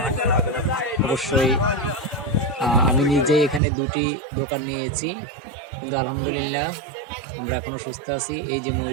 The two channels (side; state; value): left; drops out; at 3.6 s